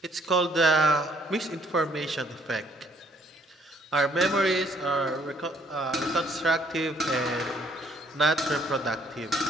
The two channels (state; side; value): normal; both; correlation 0.64